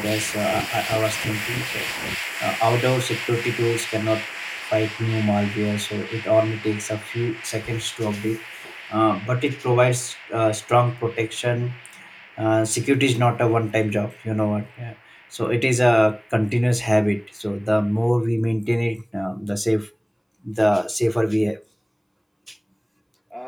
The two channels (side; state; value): both; identical; correlation 1.00